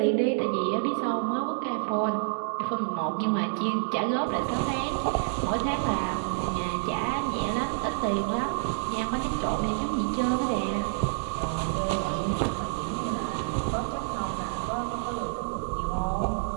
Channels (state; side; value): silent; left; digital silence